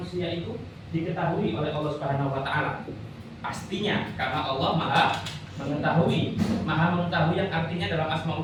itu diketahui oleh Allah Subhanahu Wa Taala? Pastinya, karena Allah Maha mengetahui. Maha mengetahui yang artinya dalam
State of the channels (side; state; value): both; identical; correlation 1.00